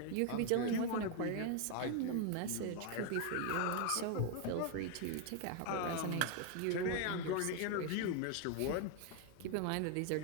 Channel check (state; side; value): different; both; correlation 0.01